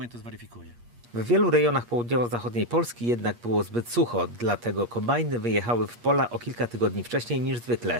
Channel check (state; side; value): late; left; 8.5 ms